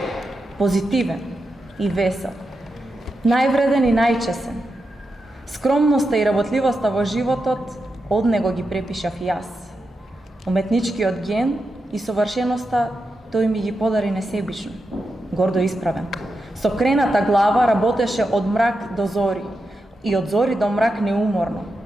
позитивен и весел, највреден и најчесен. Скромноста и работливоста во животот од него ги препишав и јас. Уметничкиот ген и совршеноста тој ми ги подари несебично, гордо исправен. Со крената глава работеше од мрак до зори и од зори до мрак неуморно,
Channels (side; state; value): both; normal; correlation 0.88